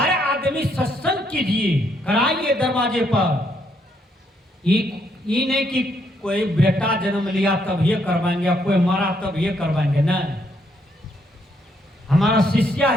आदमी सत्संग कीजिए, कराइए दरवाजे पर। ये नहीं कि कोई बेटा जन्म लिया तब ये करवाएंगे, कोई मरा तब ये करवाएंगे, नहीं। हमारा शिष्या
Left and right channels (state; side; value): normal; both; correlation 0.73